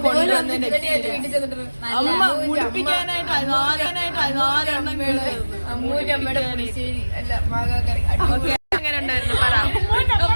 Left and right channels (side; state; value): both; inverted; correlation -1.00